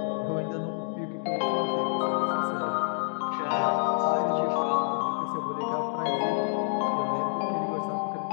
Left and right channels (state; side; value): silent; right; digital silence